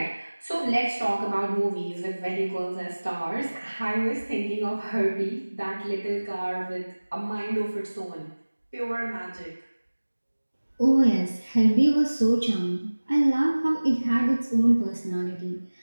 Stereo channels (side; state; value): both; inverted; correlation -1.00